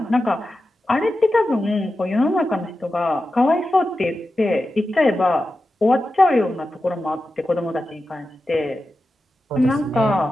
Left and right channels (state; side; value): normal; both; correlation 0.92